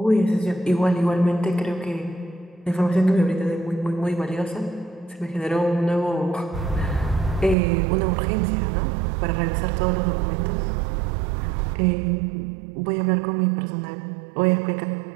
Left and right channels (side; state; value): left; drops out; at 7.6 s